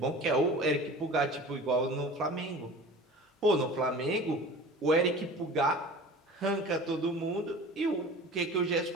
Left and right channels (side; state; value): both; normal; correlation 0.39